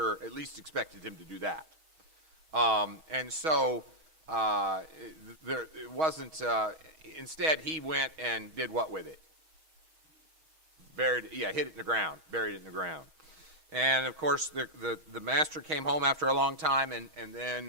at least expected him to do that. And so it wasn't. Instead, he went and did what with it? Hid it in the ground, buried it in the ground. And of course, the master came home after a long time, and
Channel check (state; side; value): late; left; 6.3 ms